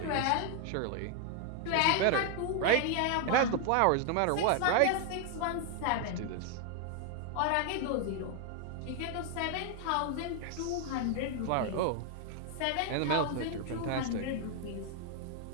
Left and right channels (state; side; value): different; both; correlation 0.00